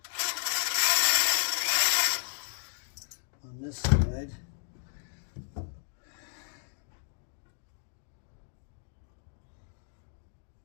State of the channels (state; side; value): silent; right; digital silence